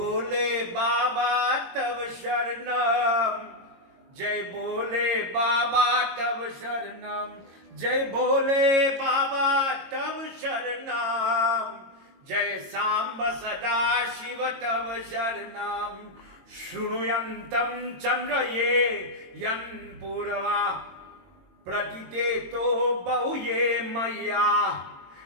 Baba Tav Sharanam. Jai Bole Baba Tav Sharanam. Jai Bole Baba Tav Sharanam. Jai Samba Sada Shiva Tav Sharanam. Shrunuyantam Chandraye Yan Purava Pratiteto Bahuye Maya.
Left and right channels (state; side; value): late; left; 22 ms